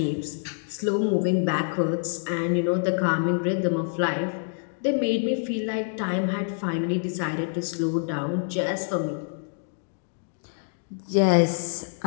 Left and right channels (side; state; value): right; silent; digital silence